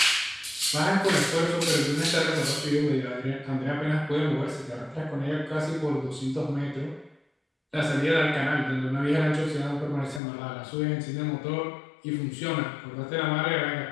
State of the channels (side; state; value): right; drops out; at 10.2 s